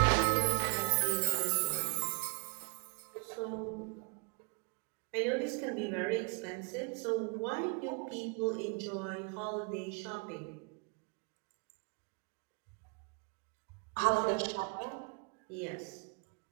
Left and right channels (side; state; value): left; quieter; 36.4 dB